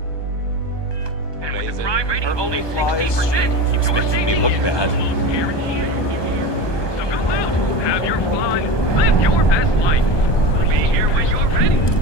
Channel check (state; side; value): late; right; 1.2 ms